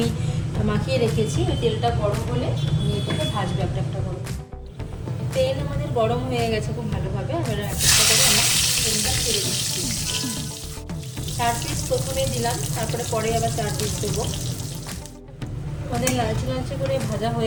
মাখিয়ে রেখেছি। তেলটা গরম হলে আমি এটাকে ভাজবো একটা একটা করে। তেল আমাদের গরম হয়ে গেছে খুব ভালোভাবে। আমরা একটা করে আমরা তেলটা ছেড়ে দিচ্ছি। 4 পিস প্রথমে দিলাম, তারপরে পরে আবার 4 পিস দেবো। আমাদের লালচে লালচে করে ভাজা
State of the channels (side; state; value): both; identical; correlation 1.00